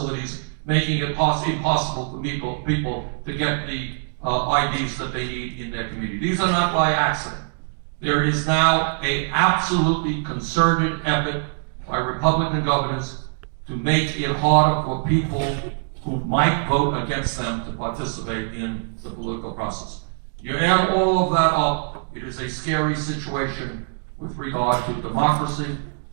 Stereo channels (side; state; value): left; silent; digital silence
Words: making it impossible for people to get the IDs that they need in their community. These are not by accident. There is now an absolutely concerted effort by Republican governors to make it harder for people who might vote against them to participate in the political process. You add all of that up, it is a scary situation with regard to democracy.